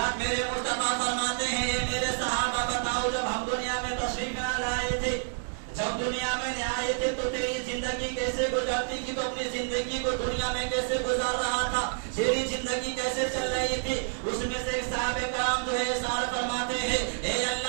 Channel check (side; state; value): left; silent; digital silence